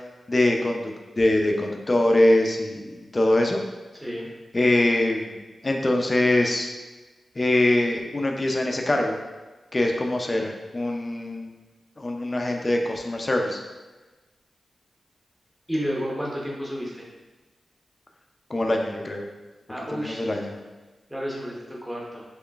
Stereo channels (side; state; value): both; normal; correlation 0.96